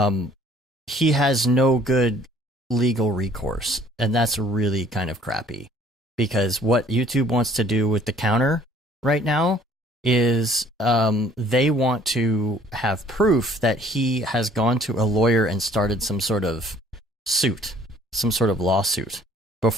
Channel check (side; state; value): both; normal; correlation 0.57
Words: he has no good legal recourse, and that's really kind of crappy. Because what YouTube wants to do with the counter right now is they want to have proof that he has gone to a lawyer and started some sort of suit, some sort of lawsuit,